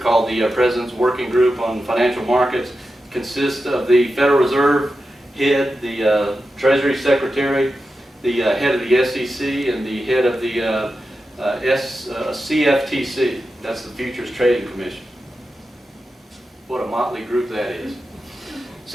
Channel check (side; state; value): both; normal; correlation 0.91